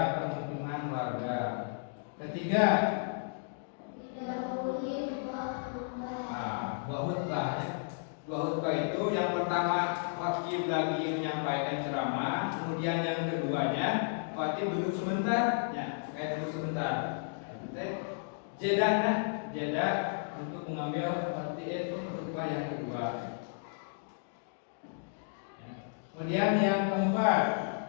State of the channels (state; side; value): silent; right; digital silence